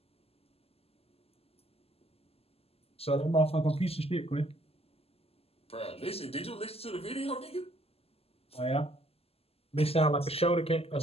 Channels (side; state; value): right; late; 0.29 ms